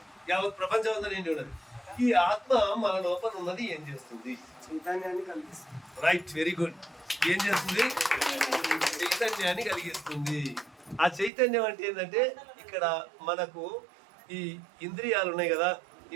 యావత్ ప్రపంచం అంతా నిండి ఉన్నది. ఈ ఆత్మ మన లోపల ఉన్నది ఏం చేస్తుంది? చైతన్యాన్ని కలిగిస్తుంది. Right, very good. ఏం చేస్తుంది? చైతన్యాన్ని కలిగిస్తుంది. ఆ చైతన్యం అంటే ఏంటంటే ఇక్కడ మనకు ఈ ఇంద్రియాలు ఉన్నాయి కదా.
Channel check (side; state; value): left; drops out; at 11.3 s